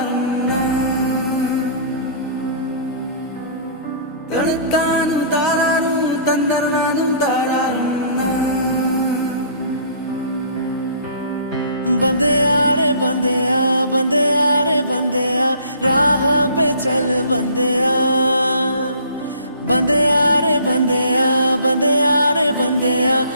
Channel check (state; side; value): inverted; both; correlation -0.52